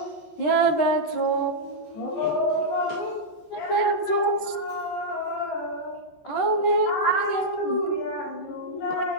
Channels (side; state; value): right; late; 13 ms